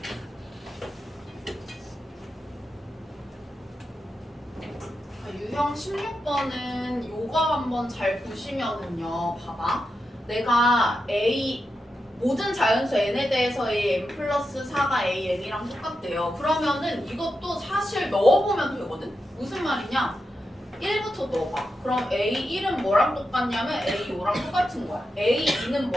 유형 16번은 요거 한번 잘 보시면은요. 봐봐. 내가 모든 자연수 n에 대해서 n 플러스 4가 an이랑 똑같대요. 그러면은 이것도 사실 넣어보면 되거든. 무슨 말이냐? 1부터 넣어봐. 그럼 A1은 뭐랑 똑같냐면 A5랑 똑같은 거야. A2는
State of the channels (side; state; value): both; normal; correlation 0.88